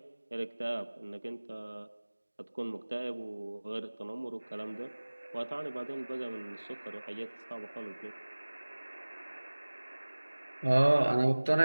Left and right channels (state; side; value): inverted; both; correlation -1.00